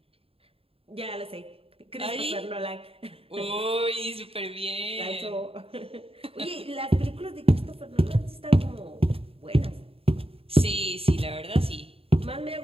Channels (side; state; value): left; late; 0.27 ms